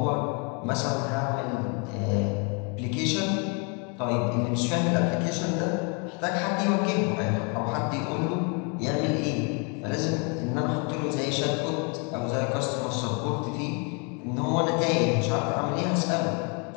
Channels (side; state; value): right; quieter; 35.7 dB